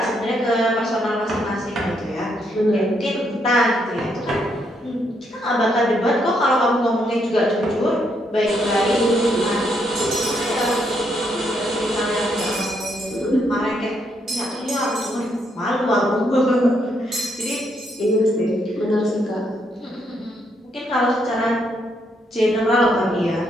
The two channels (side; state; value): both; normal; correlation 0.75